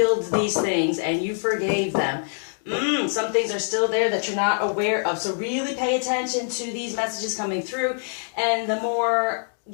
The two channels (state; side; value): silent; right; digital silence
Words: these things and you forgave them, some things are still there that you're not aware of. So really pay attention to these messages coming through. And the more